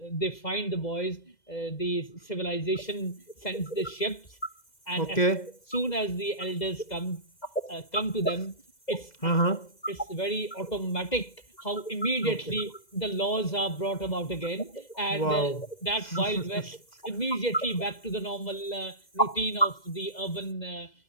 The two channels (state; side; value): late; right; 2.0 ms